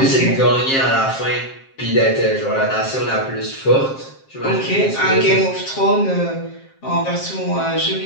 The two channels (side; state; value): right; late; 7.5 ms